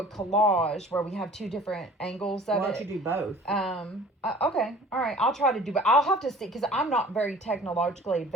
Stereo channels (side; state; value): both; normal; correlation 0.48